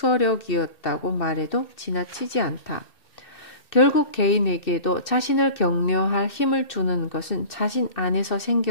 말해도 지나치지 않다. 결국 개인에게도 자신을 격려할 힘을 주는 것은 자신 안에서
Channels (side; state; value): right; late; 2.6 ms